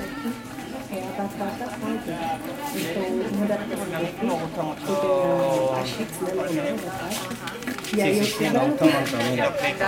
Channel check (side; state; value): both; identical; correlation 1.00